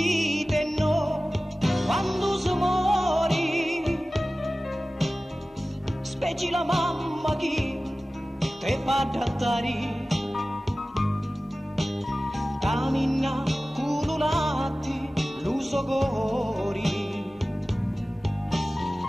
no quando si muori, specie la mamma che te fa adattare, cammina cululati l'uso cori,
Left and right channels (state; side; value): normal; both; correlation 0.97